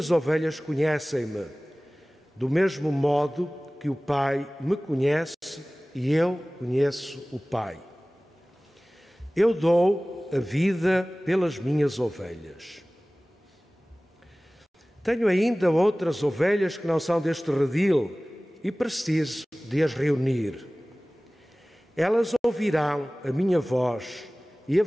ovelhas conhecem-me, do mesmo modo que o Pai me conhece e eu conheço o Pai. Eu dou a vida pelas minhas ovelhas. Tenho ainda outras ovelhas que não são deste redil, e preciso de as reunir. Elas ouvirão a minha voz e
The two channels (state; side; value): normal; both; correlation 0.98